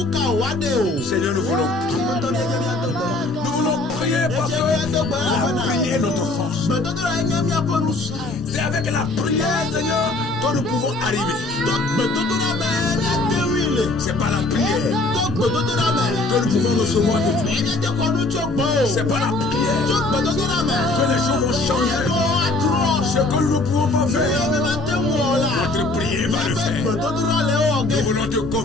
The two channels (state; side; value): quieter; right; 3.0 dB